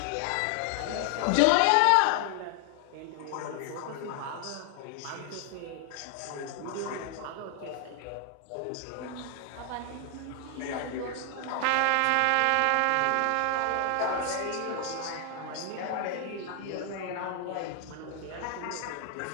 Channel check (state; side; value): different; both; correlation 0.00